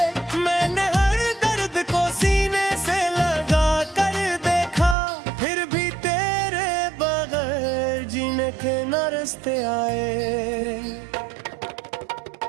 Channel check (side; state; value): left; drops out; at 5.0 s